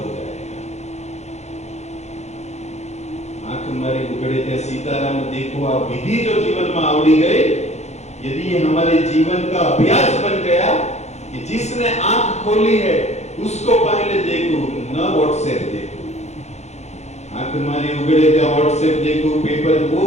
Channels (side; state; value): right; late; 0.32 ms